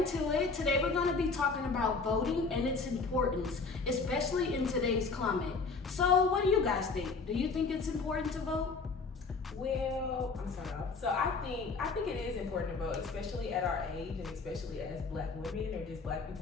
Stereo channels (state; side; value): quieter; right; 4.4 dB